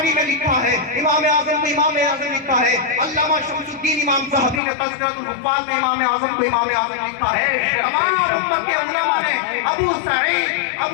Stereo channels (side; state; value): right; drops out; at 4.6 s